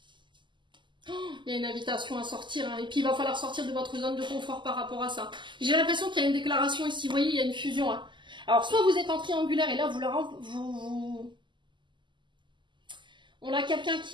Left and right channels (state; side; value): late; left; 0.23 ms